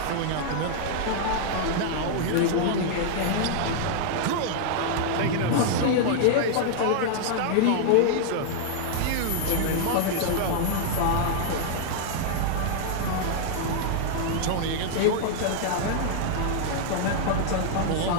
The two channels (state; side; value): different; both; correlation -0.01